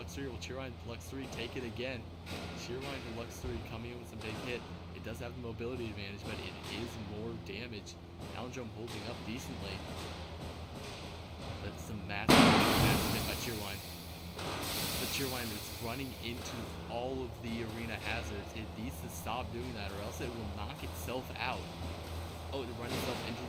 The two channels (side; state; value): both; identical; correlation 1.00